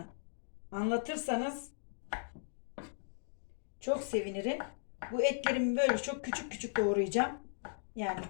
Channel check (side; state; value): right; silent; digital silence